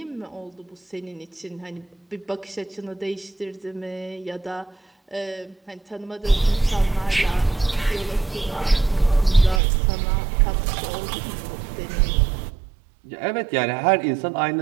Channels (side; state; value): left; drops out; at 9.6 s